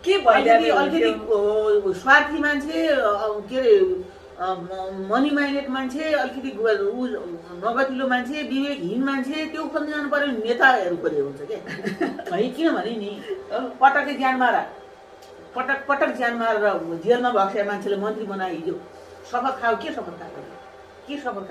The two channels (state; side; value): identical; both; correlation 1.00